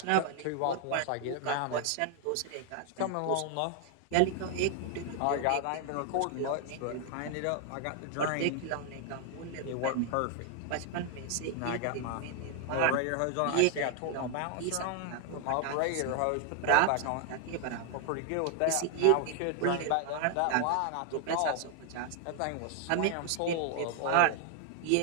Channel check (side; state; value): both; different; correlation 0.00